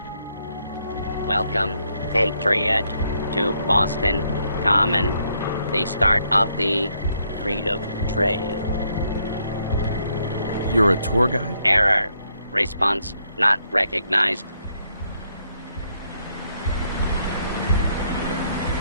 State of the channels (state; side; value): inverted; both; correlation -0.74